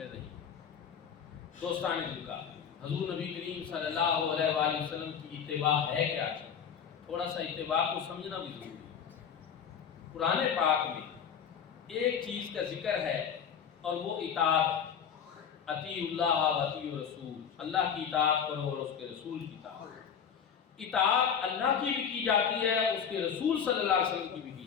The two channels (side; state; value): right; quieter; 7.5 dB